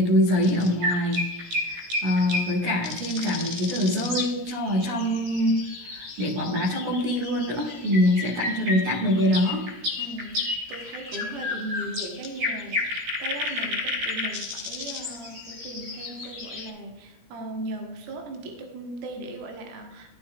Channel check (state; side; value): late; left; 17 ms